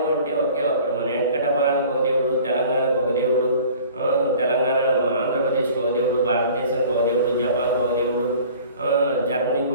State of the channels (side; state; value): both; inverted; correlation -0.47